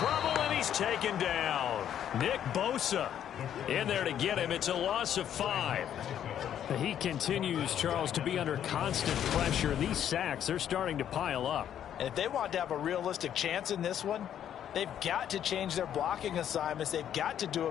and he's taken down. Nick Bosa in there to get him. It's a loss of 5. He continues, Charles, to be under constant pressure. These sacks, they're starting to pile up. And if they want to have a realistic chance in this one, they've got to change their blocking assignments. They've got to do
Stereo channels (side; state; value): right; quieter; 10.0 dB